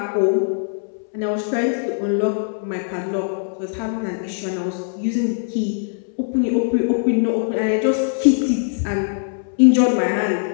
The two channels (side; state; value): right; silent; 65 dB below the other